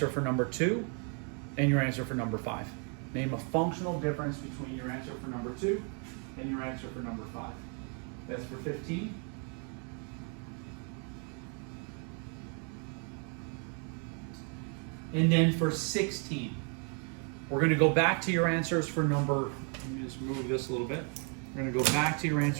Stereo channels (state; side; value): quieter; left; 39.2 dB